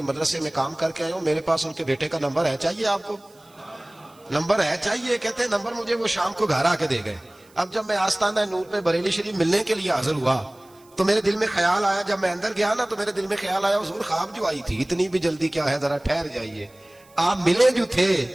مدرسے میں کام کر کے آیا ہوں, میرے پاس ان کے بیٹے کا نمبر ہے, چاہیے آپ کو؟ نمبر ہے چاہیے. کہتے ہیں نمبر مجھے وہ شام کو گھر آ کے دے گئے. اب جب میں آستانہ نور پہ بریلی شریف ملنے کے لیے حاضر ہوا تو میرے دل میں خیال آیا, جب میں اندر گیا نا تو میرے دل میں خیال آیا حضور خواب جو آئی تھی اتنی بھی جلدی کیا ہے, ذرا ٹھہر جائیے, آپ ملے جو تھے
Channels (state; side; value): noise; right; hiss, 29 dB below the sound